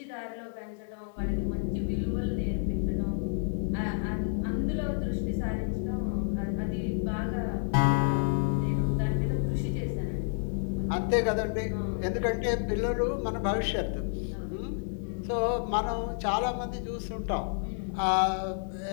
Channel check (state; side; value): silent; right; digital silence